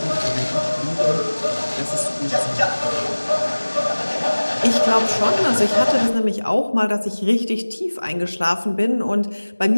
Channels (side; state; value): both; inverted; correlation -1.00